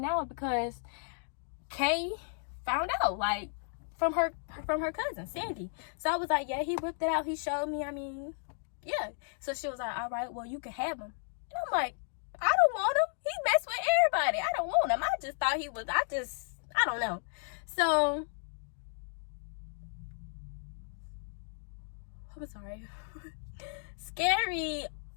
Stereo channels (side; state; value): right; silent; digital silence